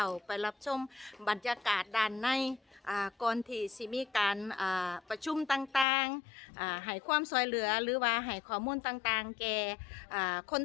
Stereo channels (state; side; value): drops out; right; at 5.9 s